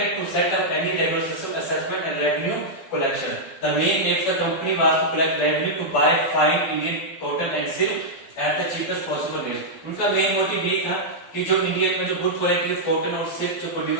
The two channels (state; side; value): late; right; 12 ms